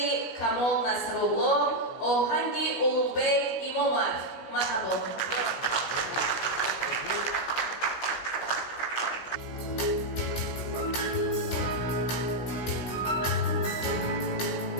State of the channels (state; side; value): late; right; 16 ms